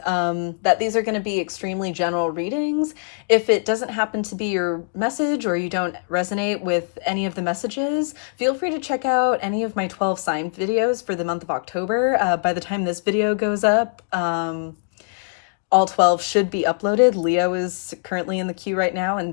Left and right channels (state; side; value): silent; right; digital silence